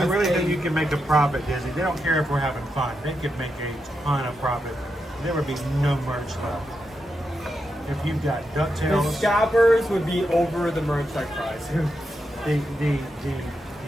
really think you can make a profit, Disney. They don't care if we're having fun. They could make a ton of profit. There would be no merch left. If you've got DuckTales, The scalpers would be over the merch like price. the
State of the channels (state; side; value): normal; both; correlation 0.85